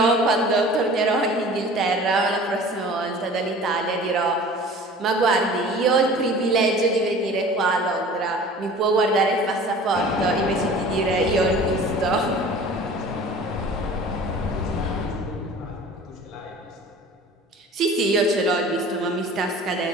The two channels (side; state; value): both; normal; correlation 0.43